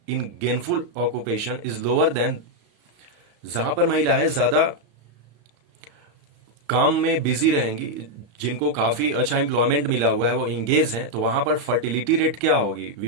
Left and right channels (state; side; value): late; left; 34 ms